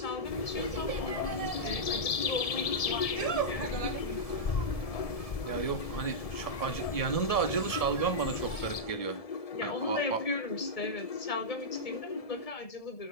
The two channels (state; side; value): late; right; 1.7 ms